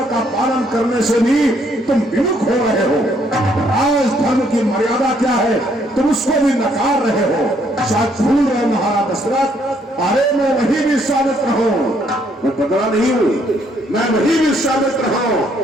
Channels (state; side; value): normal; both; correlation 0.69